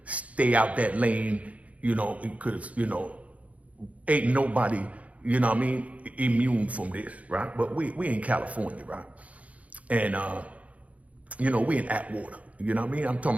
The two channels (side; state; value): left; late; 0.067 ms